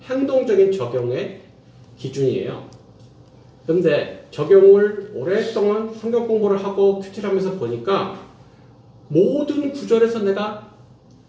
행동적인 적용의 기준이에요. 그런데 적용을 오랫동안 성경 공부를 하고 큐티하면서 보니까 모든 구절에서 내가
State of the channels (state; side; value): identical; both; correlation 1.00